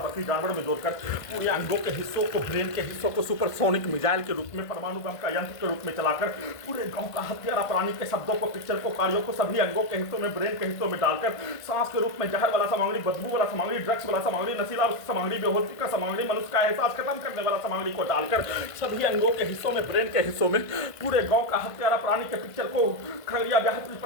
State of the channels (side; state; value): right; late; 1.5 ms